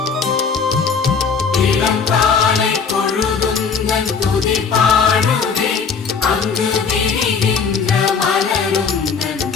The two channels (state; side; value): quieter; right; 5.7 dB